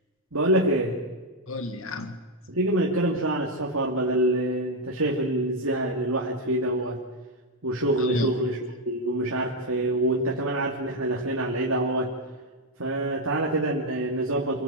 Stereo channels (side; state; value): both; normal; correlation 0.03